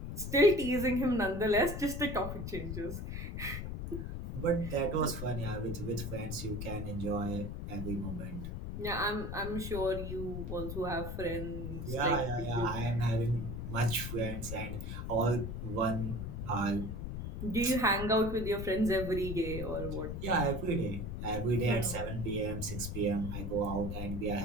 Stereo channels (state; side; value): noise; left; rumble, 5 dB below the sound